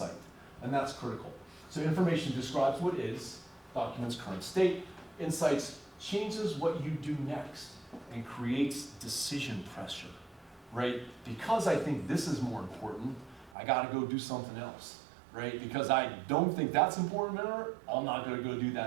and that's critical. So information describes what is, documents current state. Insights changes what you do next and creates decision pressure, right? Because I think this is more important, I gotta go do something else, right? Because I don't think that's important to her, I'm not gonna go do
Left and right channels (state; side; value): drops out; left; at 13.6 s